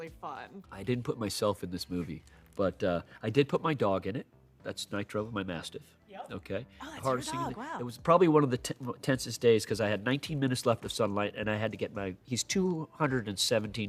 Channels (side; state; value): both; identical; correlation 1.00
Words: fun. I didn't put myself in this movie, but I did put my dog in it. That's Nitro, my Mastiff. Yep. Okay. Oh, that's Hardest your thing dog, wow. It was probably one of the tensest days, because I had 19 minutes left of sunlight, and I had to get he's